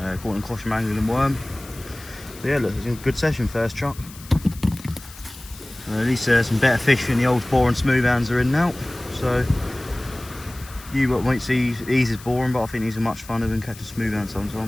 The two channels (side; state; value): left; noise; hiss, 18 dB below the sound